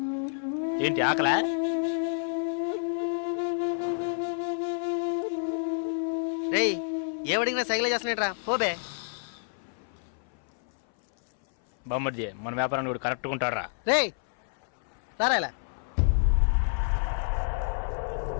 ఏంటి ఆకలా? రేయ్, ఏమడిగినా సైకిల్ చేస్తున్నాడ్రా, పోబే. బామ్మర్జీ, మన వ్యాపారాన్ని కూడా కరెక్ట్గా ఉంటాడురా. రే రారా ఇలా.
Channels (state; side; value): silent; right; 58 dB below the other